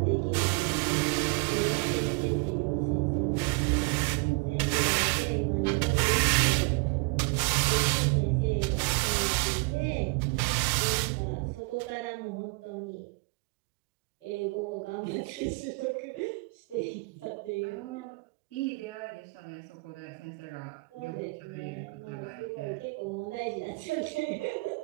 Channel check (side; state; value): left; quieter; 29.7 dB